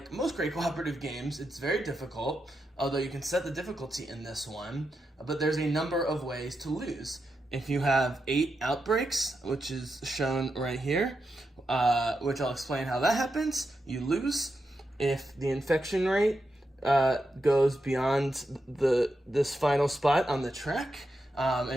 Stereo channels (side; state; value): both; normal; correlation 0.86